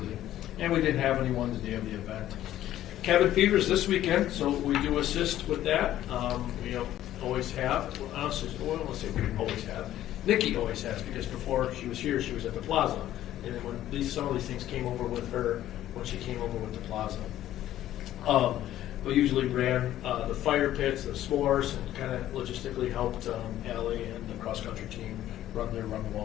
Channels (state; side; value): quieter; right; 13.0 dB